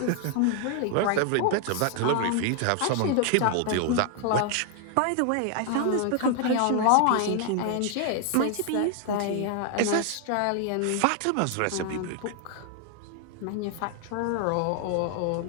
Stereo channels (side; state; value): both; different; correlation 0.00